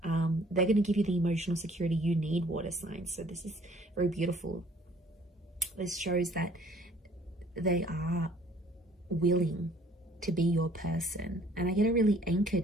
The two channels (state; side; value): normal; both; correlation 0.57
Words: They're going to give you the emotional security you need, water signs. So this is very beautiful. This shows that they are willing to be your person. And I get a really